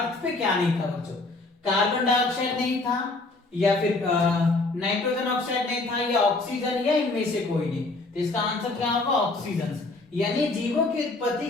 पे क्या नहीं था बच्चों? कार्बन डाइऑक्साइड नहीं था, या फिर नाइट्रोजन ऑक्साइड नहीं था, या ऑक्सीजन, या इनमें से कोई नहीं। तो इसका आंसर क्या होगा? ऑक्सीजन। यानी जीवों की उत्पत्ति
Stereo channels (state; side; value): quieter; right; 3.2 dB